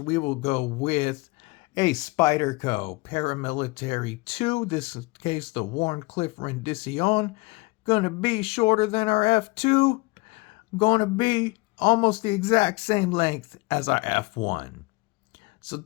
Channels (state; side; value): quieter; right; 25.2 dB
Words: we will go with a Spyderco Paramilitary 2. This case, the Warncliffe Rendition. Going to be shorter than our F2. Going to be almost the exact same length as our F1. So